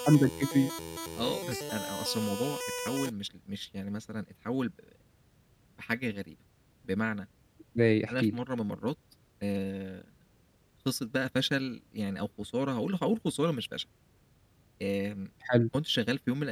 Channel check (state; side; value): identical; both; correlation 1.00